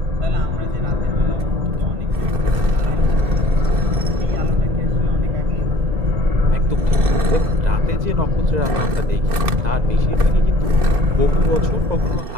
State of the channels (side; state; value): left; late; 2.6 ms